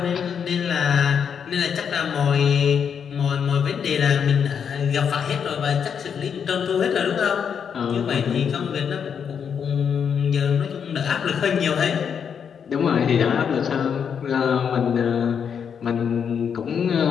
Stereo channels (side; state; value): right; quieter; 7.3 dB